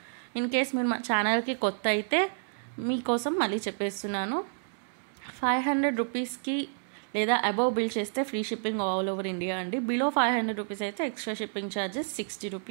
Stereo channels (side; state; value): left; silent; digital silence